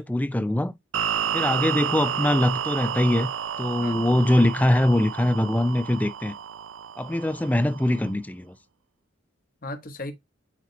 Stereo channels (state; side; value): normal; both; correlation 0.83